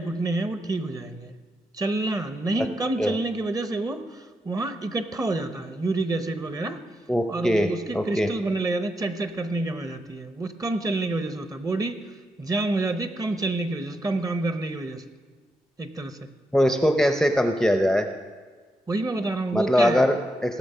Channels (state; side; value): normal; both; correlation 0.84